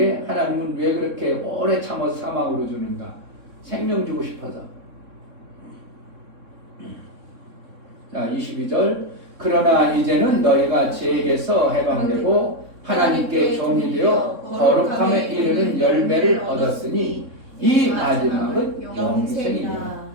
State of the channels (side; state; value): left; late; 3.6 ms